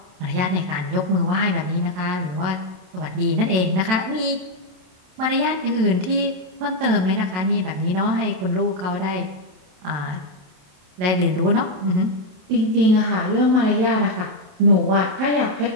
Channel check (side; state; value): left; late; 27 ms